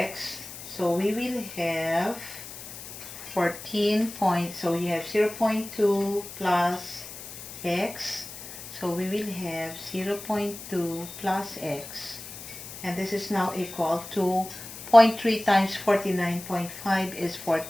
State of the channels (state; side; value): noise; left; hiss, 12 dB below the sound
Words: So we will have 14 points. So you have 0.2 plus X. So we will have 0.2 plus X, and this is now equal to 0.3 times 49.5 is